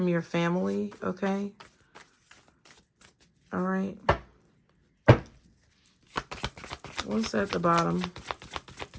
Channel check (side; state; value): both; identical; correlation 1.00